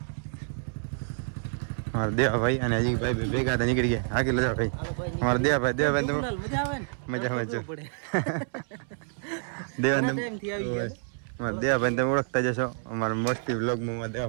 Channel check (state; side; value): silent; left; 59 dB below the other